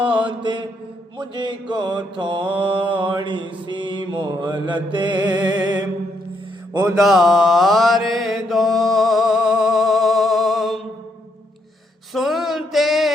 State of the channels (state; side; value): normal; both; correlation 0.75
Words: مجھے کو تھوڑی سی مہلت ادار دو، سنتے